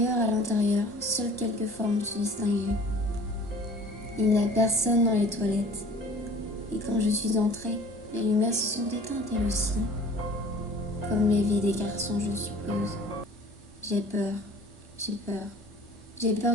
à l'intérieur, seules quelques formes se distinguaient. Il n'y a personne dans les toilettes. Et quand je suis entrée, les lumières se sont éteintes elles aussi. Comme les vies des garçons, je suppose. J'ai peur. J'ai peur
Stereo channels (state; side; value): normal; both; correlation 0.47